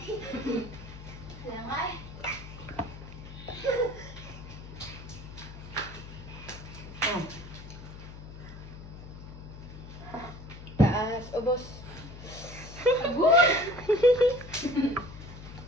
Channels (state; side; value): noise; left; hum, 13 dB below the sound